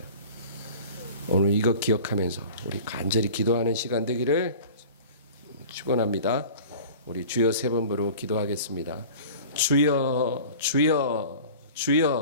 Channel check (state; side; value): inverted; both; correlation -0.41